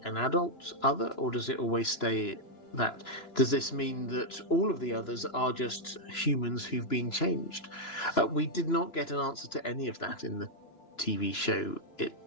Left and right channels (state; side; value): late; right; 2.9 ms